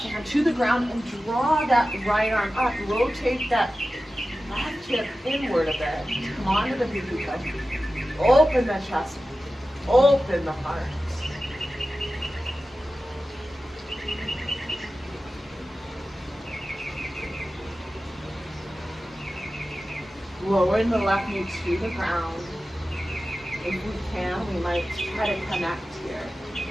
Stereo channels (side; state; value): both; normal; correlation 0.94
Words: to the ground and draw that right arm up. Rotate that left hip inward a bit. Come on to the pinky toe. Open the chest. Open the heart. Lowering the left knee to the ground. If we can, we might try to connect here.